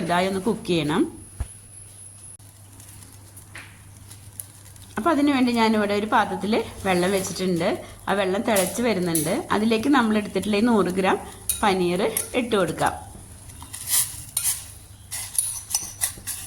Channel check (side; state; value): both; identical; correlation 1.00